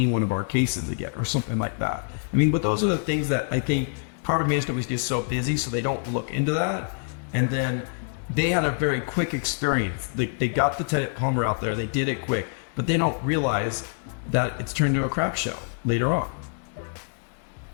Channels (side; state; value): right; silent; digital silence